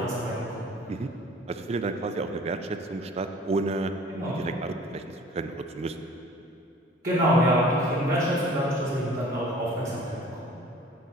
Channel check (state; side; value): normal; both; correlation 0.48